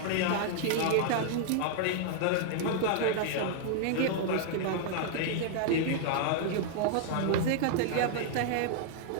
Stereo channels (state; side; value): different; both; correlation -0.01